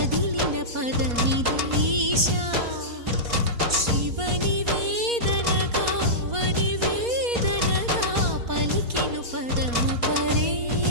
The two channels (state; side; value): late; left; 4.2 ms